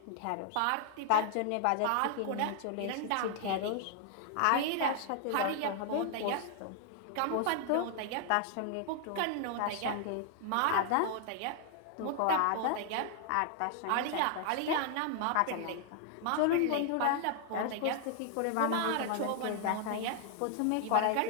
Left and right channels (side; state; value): both; different; correlation 0.00